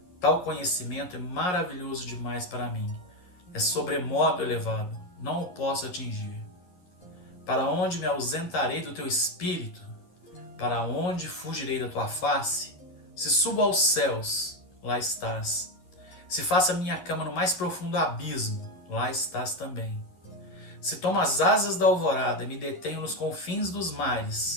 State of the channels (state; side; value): late; right; 11 ms